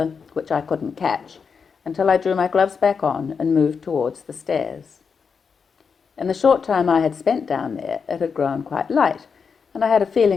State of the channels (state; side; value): quieter; right; 5.8 dB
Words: which I couldn't catch, until I drew my gloves back on and moved towards the stairs. In the short time I had spent down there, it had grown quite light, and I had a